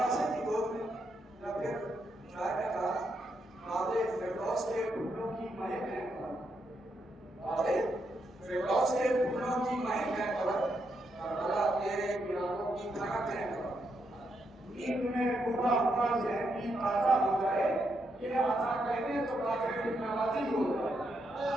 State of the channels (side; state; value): both; normal; correlation 0.80